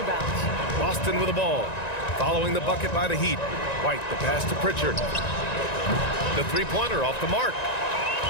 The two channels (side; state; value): right; late; 1.9 ms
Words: Boston with the ball. Following the bucket by the Heat. White, the pass to Pritchard. The three-pointer off the mark.